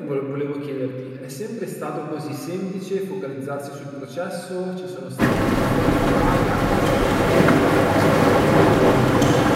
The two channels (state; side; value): identical; both; correlation 1.00